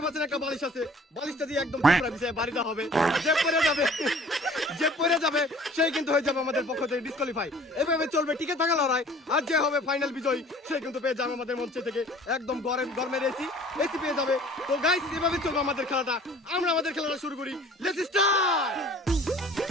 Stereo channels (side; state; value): both; normal; correlation 0.50